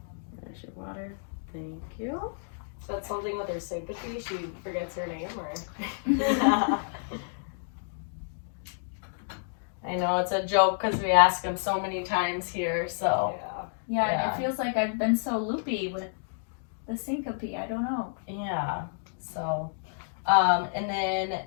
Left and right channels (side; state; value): right; silent; digital silence